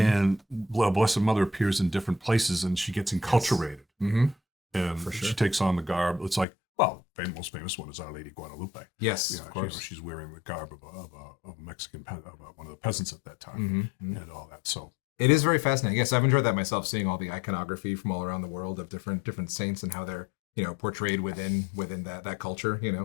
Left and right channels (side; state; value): right; drops out; at 6.5 s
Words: Blessed Mother appears in different places and she gets enculturated. Mm-hmm. And she takes on the garb. It's like, well, the most famous one is Our Lady Guadalupe. Yes, of course. She's wearing the garb of a Mexican, one of the peasants at that time, and all that. So it is very fascinating. Yes, I've enjoyed that myself, seeing all the iconography from all around the world of different saints and how they're portrayed within that culture.